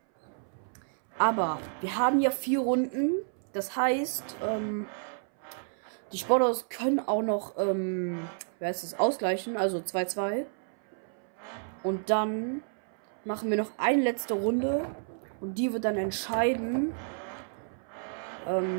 Aber wir haben ja 4 Runden. Das heißt, die Sportautos können auch noch, ausgleichen, also 2-2. Und dann machen wir noch eine letzte Runde. Und die wird dann entscheiden,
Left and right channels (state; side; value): silent; left; 58 dB below the other